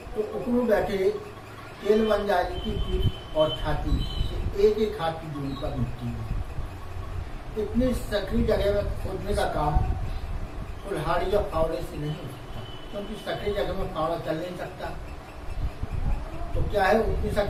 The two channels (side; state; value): both; identical; correlation 1.00